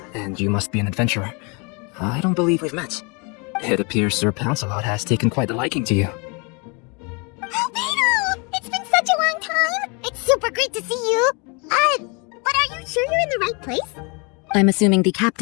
and you must be an adventurer. I don't believe we've met. It appears Sir Lancelot has taken quite a liking to you. Beto! It's been such a long time! It's super great to see you! But are you sure you're in the right place? I'm assuming the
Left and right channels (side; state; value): right; quieter; 31.9 dB